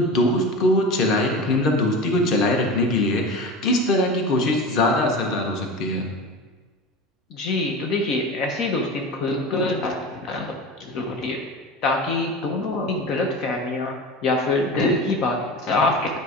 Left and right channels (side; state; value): both; normal; correlation 0.30